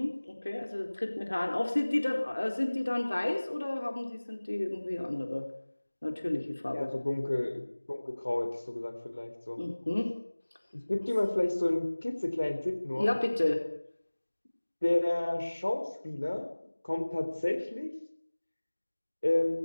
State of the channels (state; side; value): inverted; both; correlation -1.00